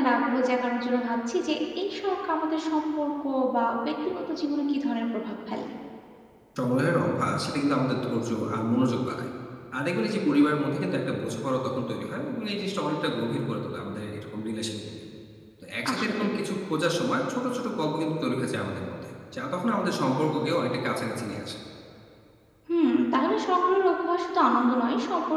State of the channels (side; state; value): both; identical; correlation 1.00